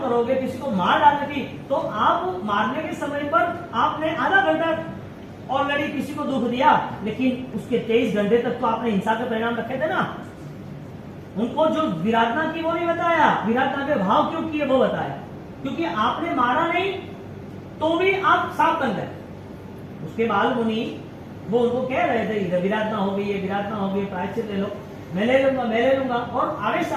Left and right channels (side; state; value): both; identical; correlation 1.00